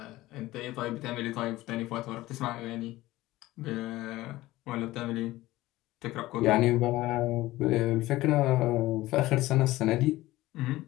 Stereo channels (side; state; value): right; quieter; 17.4 dB